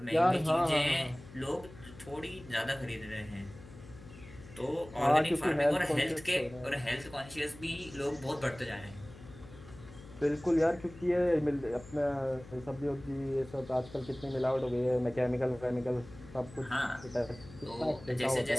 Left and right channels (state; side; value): noise; left; hum, 18 dB below the sound